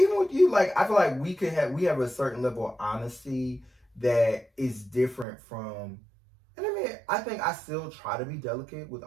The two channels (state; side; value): drops out; left; at 5.2 s